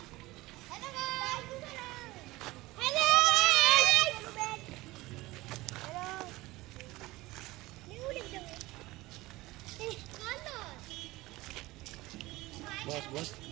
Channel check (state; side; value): quieter; left; 19.6 dB